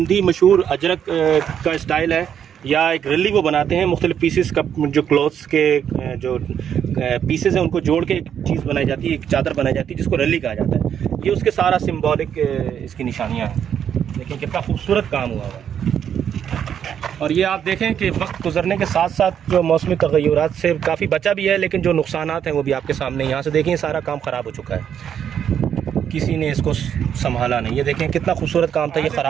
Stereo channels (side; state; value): left; quieter; 8.8 dB